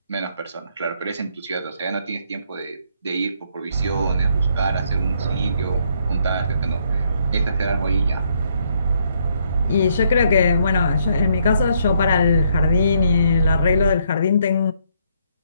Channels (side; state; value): both; inverted; correlation -0.71